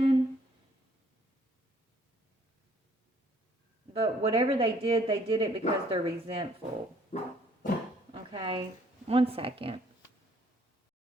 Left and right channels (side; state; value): both; normal; correlation 0.62